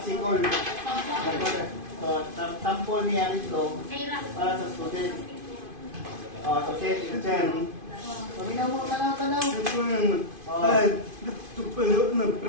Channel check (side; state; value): left; late; 2.5 ms